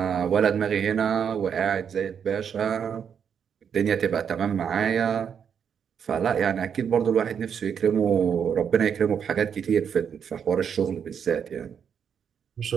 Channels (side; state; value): left; quieter; 7.6 dB